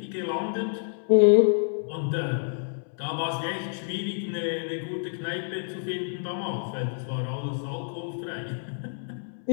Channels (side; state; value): right; silent; 59 dB below the other